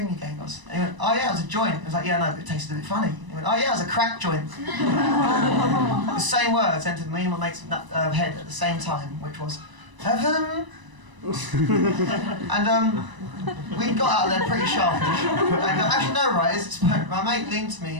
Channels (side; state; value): left; late; 1.0 ms